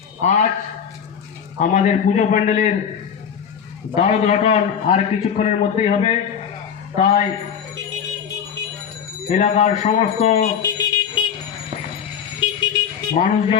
আজ আমাদের পুজো প্যান্ডেলের দ্বারোদ্ঘাটন আর কিছুক্ষণের মধ্যেই হবে, তাই এলাকার সমস্ত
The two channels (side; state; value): right; quieter; 7.8 dB